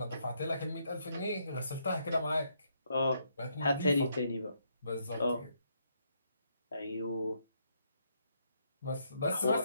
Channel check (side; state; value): both; inverted; correlation -0.75